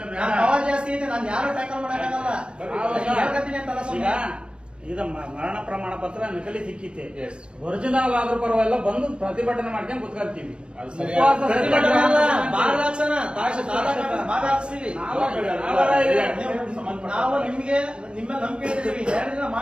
ನಾನು ಪವರ್ ಜಾಸ್ತಿ ಐತೆ, ನಾನು ಯಾರು ಟ್ಯಾಕಲ್ ಮಾಡಕ್ಕಾಗಲ್ಲ. ಹೇಳ್ಕತ್ತೀನಿ ಅಂತಲ್ಲ ಈಗ ಸ್ವಾಮಿ. ಇದು ಮರಣ ಪ್ರಮಾಣ ಪತ್ರ ನಕಲಿ ಸಿಕ್ಕಿತೆ, Yes. ಒರಿಜಿನಲ್ ಆದ್ರೂ ಪರವಾಗಿಲ್ಲ, ಬಂದು ಪ್ರತಿಭಟನೆ ಮಾಡ್ಕೊಂಡು ಕುತ್ಕೊಳ್ತೀವಿ. ಅದು ಸರಿ. ಉಪವಾಸ ಪ್ರತಿಭಟನೆ ಅಲ್ಲ, ಸತ್ಯಾಗ್ರಹ ಬಾರ್ ಹಾಕ್ಸೋಣ, ತಾಲೂಕು ಆಫೀಸ್ ಬಾರ್ ಹಾಕ್ಸ್ತೀವಿ. ನಾವು ನಿಮ್ಗೆ ನಿಮ್ಮ ನಂಬಿಕೆ ಇರ್ತೀವಿ, 2 ದಿನ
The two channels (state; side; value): late; left; 0.057 ms